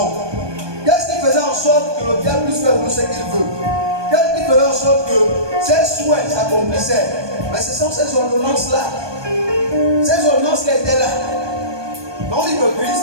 Qu'est-ce qui faisait en sorte que le diable puisse faire nous ce qu'il veut? Qu'est-ce qui faisait en sorte que ses souhaits s'accomplissaient? Mais ce sont ces ordonnances-là. Ces ordonnances qui étaient là. Non, dit que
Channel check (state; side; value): late; left; 1.2 ms